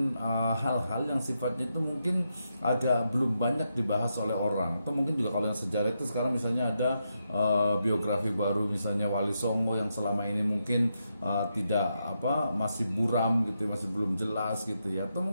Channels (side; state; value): both; inverted; correlation -0.84